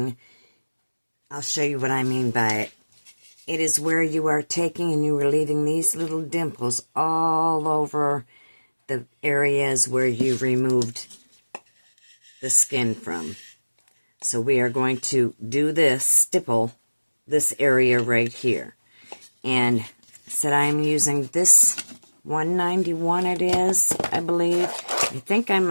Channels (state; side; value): inverted; both; correlation -1.00